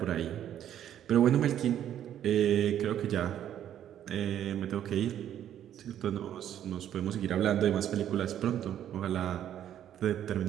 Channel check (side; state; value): left; quieter; 10.6 dB